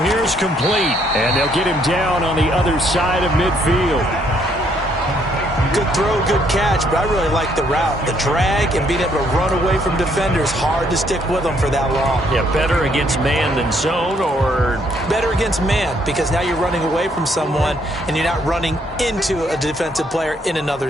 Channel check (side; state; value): both; normal; correlation 0.69